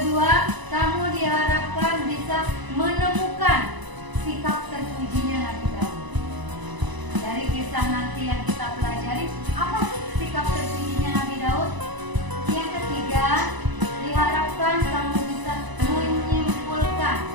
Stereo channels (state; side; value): late; left; 1.0 ms